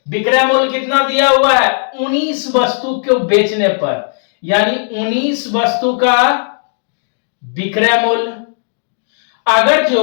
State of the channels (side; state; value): right; silent; digital silence